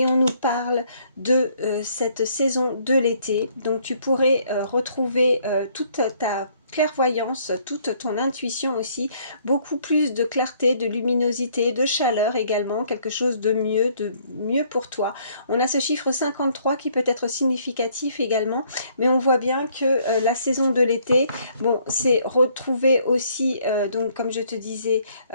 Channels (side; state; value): both; inverted; correlation -0.65